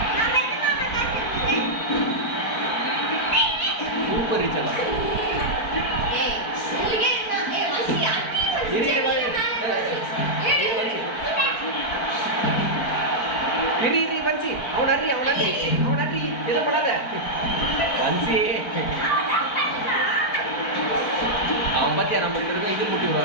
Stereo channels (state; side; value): late; right; 4.5 ms